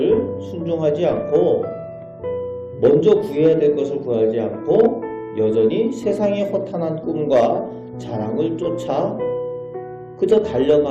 순종하지 않고 먼저 구해야 될 것을 구하지 않고 여전히 세상의 허탄한 꿈과 자랑을 쫓아 그저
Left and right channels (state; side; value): identical; both; correlation 1.00